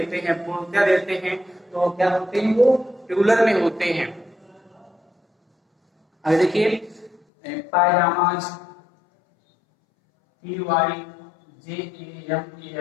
हैं, पूर्णता देते हैं, तो क्या होते हैं, वो प्लूरल में होते हैं। अब देखिए पायजामाज,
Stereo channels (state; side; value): drops out; right; at 7.2 s